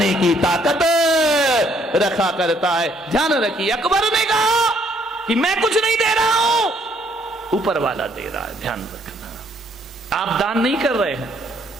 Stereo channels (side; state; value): both; normal; correlation 0.66